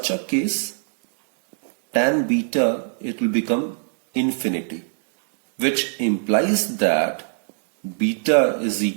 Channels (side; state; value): left; silent; digital silence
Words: a case, tan beta, it will become infinity, which implies that beta is